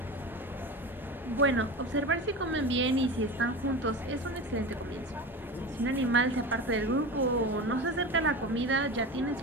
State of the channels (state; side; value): normal; both; correlation 0.28